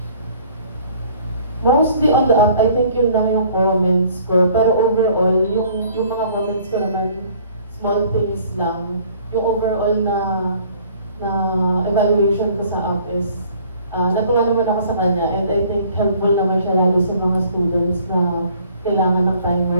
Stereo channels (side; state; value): both; inverted; correlation -0.55